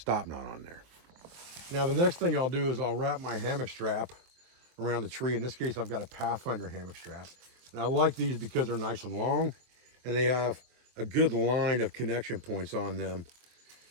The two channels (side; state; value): left; late; 23 ms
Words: knot on there. Now the next thing I'll do is I'll wrap my hammock strap around the tree. In this case, I've got a Pathfinder hammock strap. And I like these because they're nice and long, and they have a good line of connection points on them.